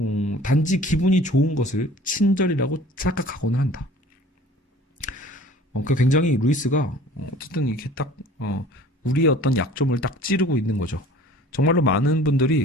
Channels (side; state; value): both; normal; correlation 0.47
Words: 단지 기분이 좋은 것을 친절이라고 착각하고는 한다. 그 굉장히 루이스가 어쨌든 이렇게 딱 우리의 어떤 약점을 딱 찌르고 있는 거죠. 정말로 많은